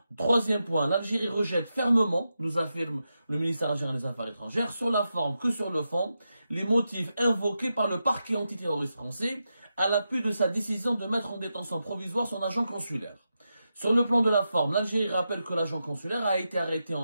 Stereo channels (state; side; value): inverted; both; correlation -0.88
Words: Troisième point, l'Algérie rejette fermement, nous affirme le ministère algérien des Affaires étrangères, sur la forme que sur le fond, les motifs invoqués par le parquet antiterroriste français à l'appui de sa décision de mettre en détention provisoire son agent consulaire. Sur le plan de la forme, l'Algérie rappelle que l'agent consulaire a été arrêté